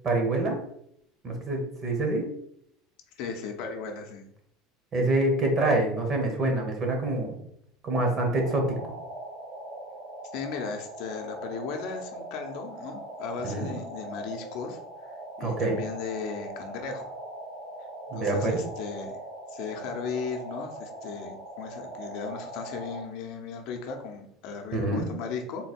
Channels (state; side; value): normal; both; correlation 0.33